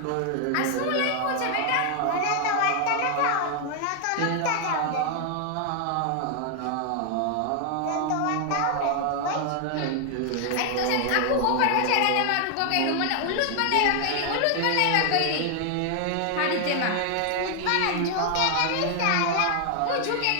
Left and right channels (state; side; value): different; both; correlation 0.00